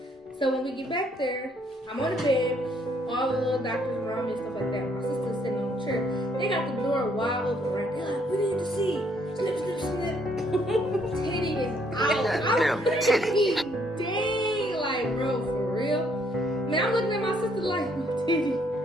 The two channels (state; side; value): normal; both; correlation 0.68